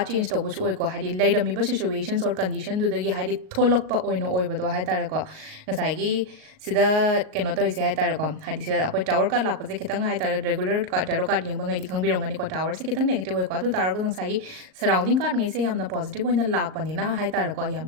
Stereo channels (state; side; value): late; left; 38 ms